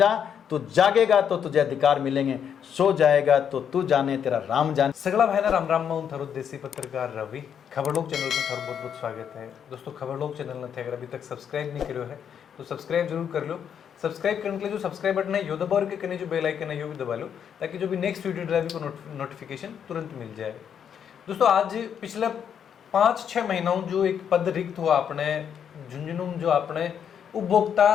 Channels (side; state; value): right; quieter; 8.2 dB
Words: तू जागेगा तो तुझे अधिकार मिलेंगे, सो जाएगा तो तू जाने तेरा राम जाने। सगला भाई राम राम मैं थारो देसी पत्रकार रवि। खबरलोक चैनल पर थारो बहुत बहुत स्वागत है। दोस्तों खबरलोक चैनल ने अगर अभी तक सब्सक्राइब नहीं करो है तो सब्सक्राइब जरूर कर लो। सब्सक्राइब करने के लिए जो सब्सक्राइब बटन है यो दबा और के जो बेल आइकन है यो भी दबा लो, ताकि जो भी नेक्स्ट वीडियो ड्राइव को नोटिफिकेशन तुरंत मिल जाए। दोस्तों आज पिछले 5-6 महीनों जो एक पद रिक्त हुआ अपने झुंझुनू, जो अपने उपभोक्ता